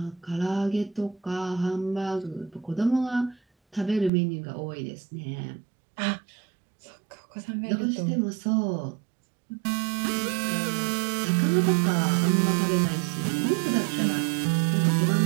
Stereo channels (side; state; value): left; drops out; at 4.1 s